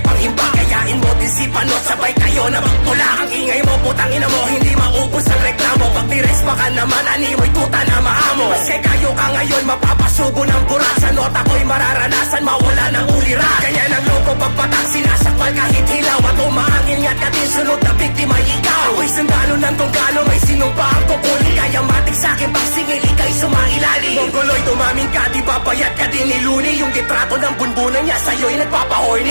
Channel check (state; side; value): inverted; both; correlation -1.00